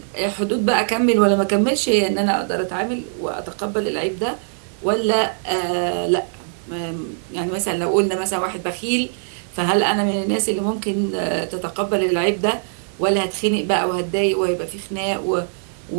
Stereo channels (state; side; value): silent; left; digital silence